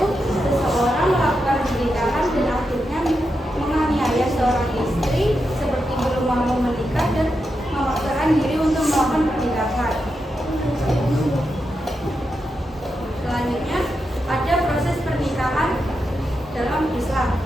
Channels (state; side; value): normal; both; correlation 0.86